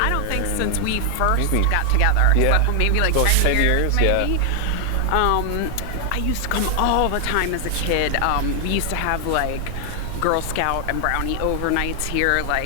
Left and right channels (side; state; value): both; different; correlation 0.00